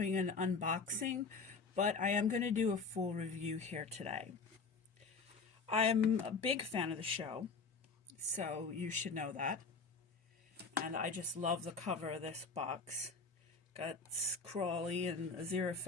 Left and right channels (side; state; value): right; quieter; 4.6 dB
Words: an unboxing, but I am going to do a full review here today. I'm a big fan of the show, so you should know that. And I just love the cover of this box. Got Crawley and